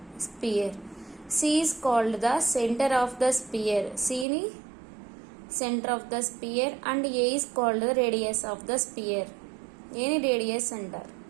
sphere. C is called the centre of the sphere. సిని centre of the sphere and a is called the radius of the sphere. ఏని రేడియస్ అంటారు.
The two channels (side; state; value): left; drops out; at 4.2 s